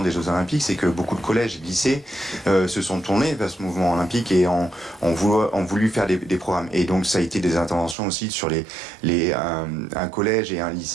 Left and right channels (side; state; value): left; drops out; at 8.0 s